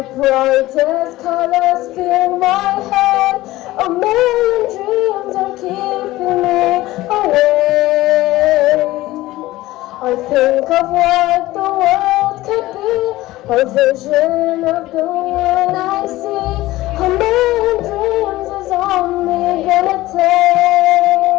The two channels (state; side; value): quieter; right; 17.4 dB